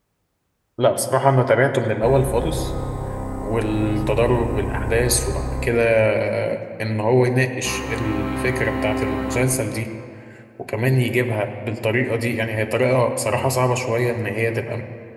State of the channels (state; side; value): identical; both; correlation 1.00